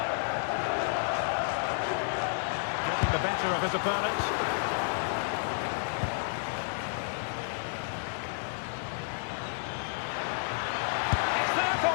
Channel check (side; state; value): right; silent; digital silence